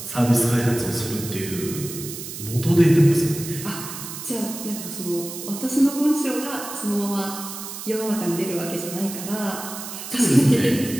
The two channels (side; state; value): right; noise; hiss, 9 dB below the sound